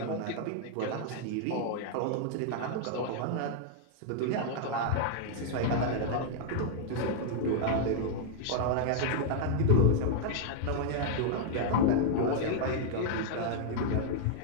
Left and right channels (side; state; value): both; different; correlation 0.00